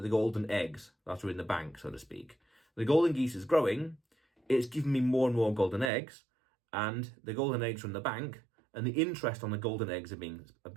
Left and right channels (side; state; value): left; drops out; at 5.9 s